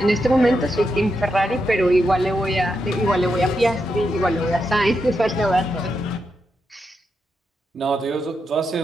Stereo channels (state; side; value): normal; both; correlation 0.84